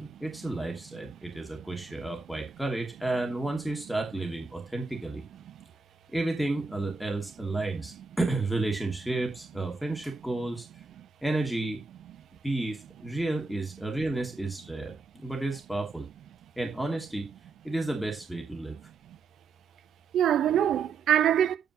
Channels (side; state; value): left; quieter; 4.3 dB